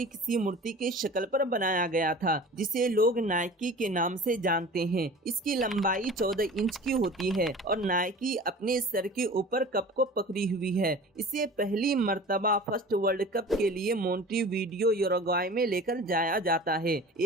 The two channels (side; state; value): both; normal; correlation 0.40